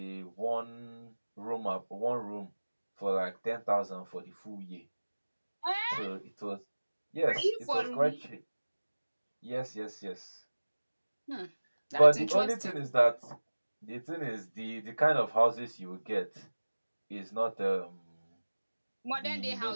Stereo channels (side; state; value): both; inverted; correlation -1.00